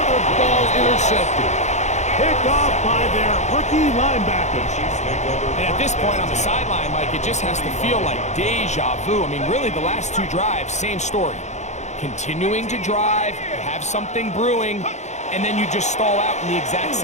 ball intercepted. Picked off by their rookie linebacker. And at this point on the sideline, Mike, it just has to feel like deja vu. I mean, really, the last 2 drives, same story. Continuing to drive, have something brewing, and then you just stall out in the exact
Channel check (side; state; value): right; late; 0.33 ms